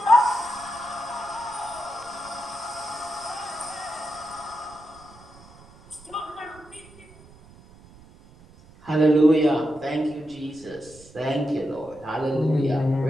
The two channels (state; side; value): noise; right; rumble, 23 dB below the sound